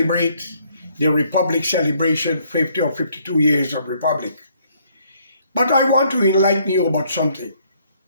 the Republic celebration, 50 or 52 years of Republic. But I want to enlighten you about something.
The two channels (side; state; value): both; inverted; correlation -0.67